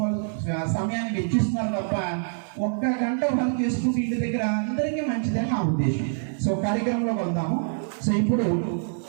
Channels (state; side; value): silent; left; 61 dB below the other